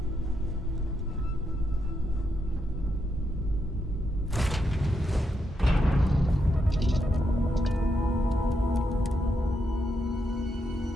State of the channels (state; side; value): normal; both; correlation 0.81